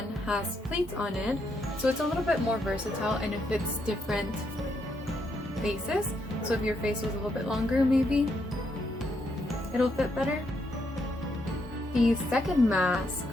has pleats on it, so it's a little bit more versatile and it fits different faces. So if your face was a little bit longer, maybe it'll fit better. The second mask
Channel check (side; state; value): both; normal; correlation 0.78